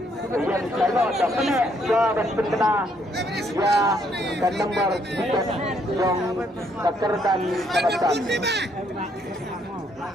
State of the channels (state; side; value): normal; both; correlation 0.70